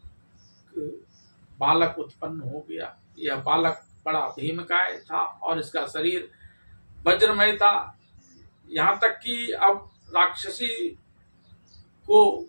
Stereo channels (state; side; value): inverted; both; correlation -1.00